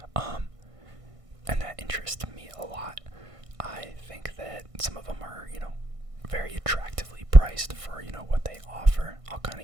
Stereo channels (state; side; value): late; left; 1.5 ms